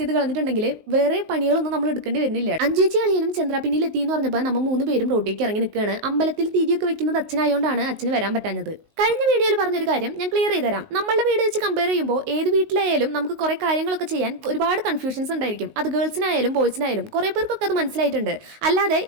കളഞ്ഞിട്ടുണ്ടെങ്കിൽ വേറെ പണികളൊന്നും നമ്മൾ എടുക്കേണ്ടി വരുന്നില്ല. അഞ്ചേച്ചി അളിയനും ചന്ദ്രാപിന്നിൽ എത്തി എന്ന് പറഞ്ഞപ്പോൾ നമ്മൾ 3 പേരും റോട്ടിലേക്ക് ഇറങ്ങി നിൽക്കുകയാണ്. അമ്പലത്തിൽ തിരിയൊക്കെ വെക്കുന്നത് അച്ഛനായതുകൊണ്ടാണ് അച്ഛന് വരാൻ പറ്റാഞ്ഞത്. കഴിഞ്ഞ വീഡിയോയിൽ പറഞ്ഞൊരു കാര്യം ഞാൻ ക്ലിയർ ചെയ്ത് തരാം. നമ്മളുടെ വീട് വെച്ച് കമ്പയർ ചെയ്യുമ്പോൾ ഏത് വീട്ടിലായാലും നമുക്ക് കുറെ കാര്യങ്ങളൊക്കെ ചെയ്യാൻ ഒരുപാട് കൺഫ്യൂഷൻസ് ഉണ്ടായിരിക്കും. അത് ഗേൾസിനായാലും ബോയ്സിനായാലും കുറെ പേർക്കൊക്കെ അത് മനസ്സിലായിട്ടുണ്ട്. അല്ലാതെ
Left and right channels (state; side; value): late; left; 19 ms